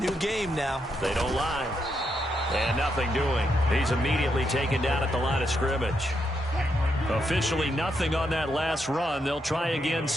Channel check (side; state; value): both; normal; correlation 0.80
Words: game now. They don't lie. And nothing doing. He's immediately taken down at the line of scrimmage. Officially nothing on that last run. They'll try again,